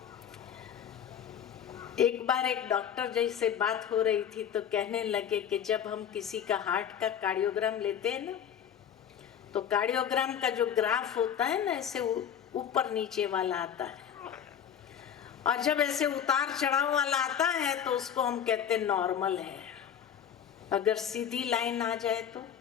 एक बार एक डॉक्टर जैसे बात हो रही थी तो कहने लगे कि जब हम किसी का हार्ट का कार्डियोग्राम लेते हैं ना, तो कार्डियोग्राम का जो ग्राफ होता है ना, ऐसे ऊपर नीचे वाला आता है, और जब ऐसे उतार चढ़ाव वाला आता है तो उसको हम कहते हैं नॉर्मल है। अगर सीधी लाइन आ जाए तो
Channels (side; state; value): right; quieter; 8.8 dB